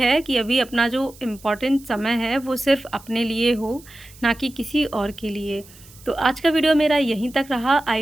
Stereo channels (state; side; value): noise; right; hiss, 23 dB below the sound